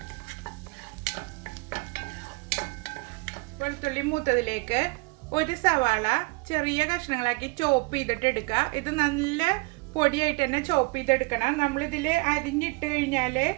വെളുത്തുള്ളി മൂത്തതിലേക്ക് ഒരു സവാള ചെറിയ കഷ്ണങ്ങളാക്കി ചോപ്പ് ചെയ്തിട്ട് എടുക്കുക. ഇത് നല്ല പൊടിയായിട്ട് തന്നെ ചോപ്പ് ചെയ്തെടുക്കണം. നമ്മളിതിൽ അരിഞ്ഞിട്ട് കഴിഞ്ഞാൽ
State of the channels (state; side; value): quieter; left; 28.0 dB